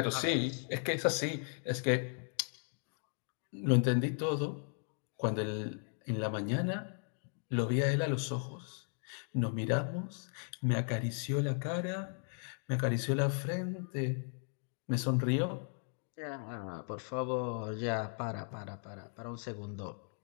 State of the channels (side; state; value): right; silent; 53 dB below the other